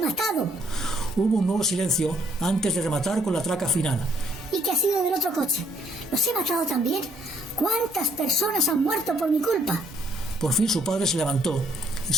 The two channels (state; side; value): normal; both; correlation 0.66